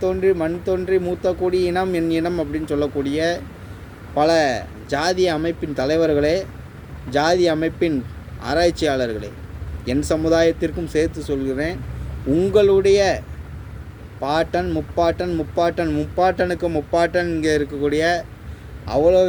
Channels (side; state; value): both; identical; correlation 1.00